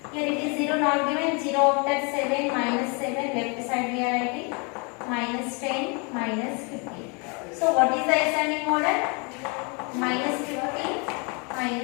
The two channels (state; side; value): quieter; right; 32.7 dB